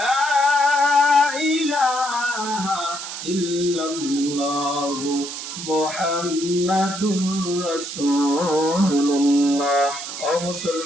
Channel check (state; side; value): noise; right; hiss, 8 dB below the sound